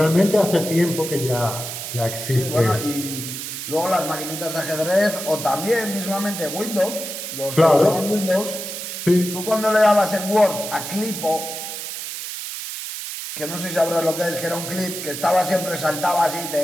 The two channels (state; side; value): noise; right; hiss, 7 dB below the sound